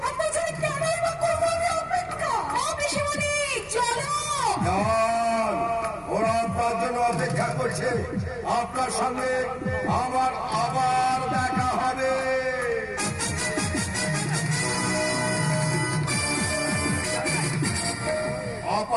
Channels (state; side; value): identical; both; correlation 1.00